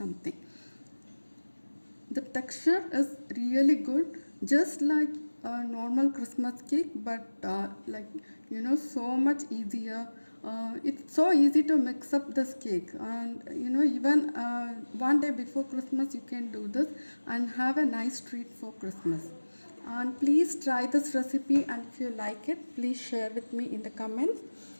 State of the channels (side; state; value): both; inverted; correlation -1.00